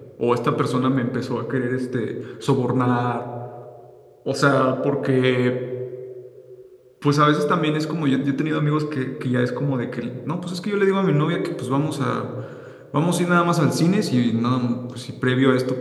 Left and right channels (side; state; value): both; identical; correlation 1.00